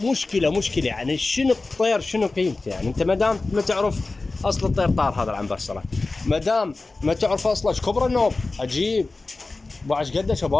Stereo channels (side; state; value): right; quieter; 3.5 dB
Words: مشكله يعني شنو الطير شنو قيمته؟ يعني انت ما دام ما تعرف اصل الطير طار هذا العنبرسره، ما دام ما تعرف اصله ايش كبر النوب عجيب بعش قده